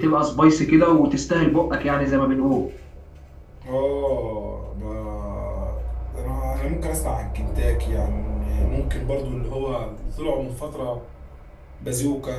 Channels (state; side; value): identical; both; correlation 1.00